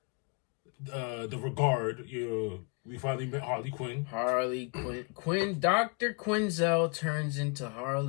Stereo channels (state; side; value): quieter; right; 35.1 dB